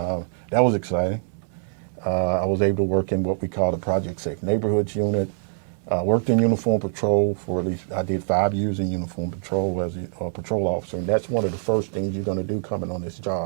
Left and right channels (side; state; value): left; silent; digital silence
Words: was exciting. I was able to work in what we call the Project Safe Neighborhoods unit. Worked in uniform patrol for at least, I did 5 years in uniform patrol as a patrol officer, and that's one of the first things you're going to do coming on this